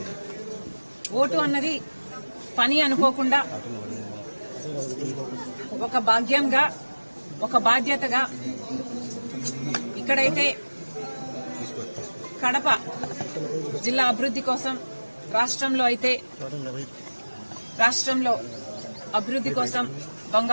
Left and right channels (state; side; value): inverted; both; correlation -1.00